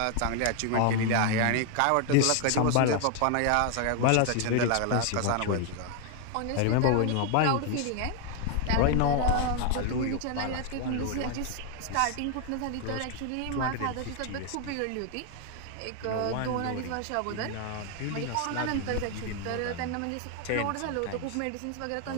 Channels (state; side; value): different; both; correlation 0.00